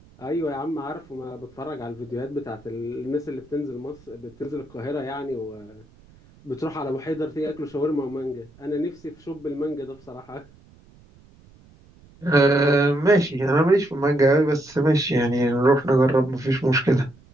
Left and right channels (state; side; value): noise; right; rumble, 26 dB below the sound